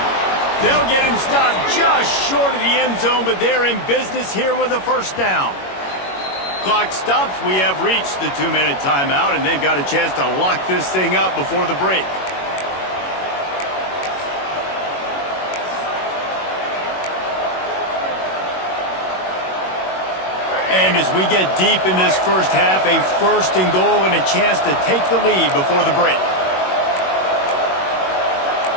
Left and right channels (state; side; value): late; right; 21 ms